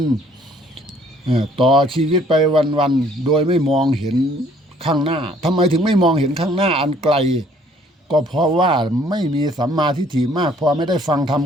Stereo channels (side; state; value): both; normal; correlation 0.60